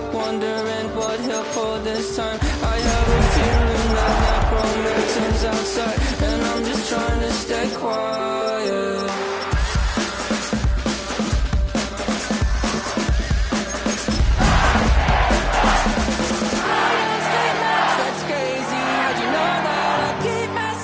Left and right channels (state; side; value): identical; both; correlation 1.00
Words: wondering what he'll pull this time. I have a feeling that necromancer's outside, and I'm just trying to stay quiet. That's crazy, how'd you know that? I keep